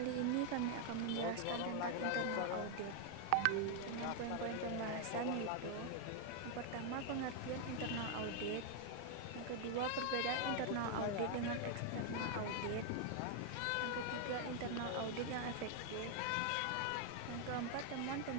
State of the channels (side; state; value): both; different; correlation 0.00